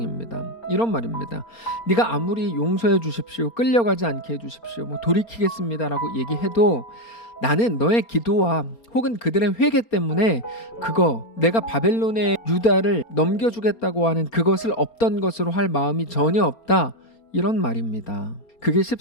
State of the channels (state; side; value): late; right; 4.3 ms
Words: 이런 말입니다. 네가 아무리 용서해 주십시오, 끌려가지 않게 해주십시오, 뭐 돌이키겠습니다라고 얘기해도 나는 너의 기도와 혹은 그들의 회개 때문에 그거 내가 바벨론의 유다를 넘겨주겠다고 하는 그것을 없던 것으로 할 마음이 전혀 없다, 이런 말입니다. 그게